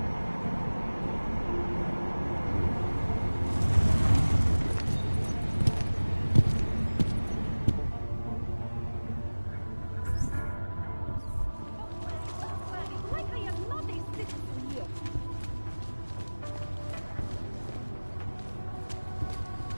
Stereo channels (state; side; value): inverted; both; correlation -1.00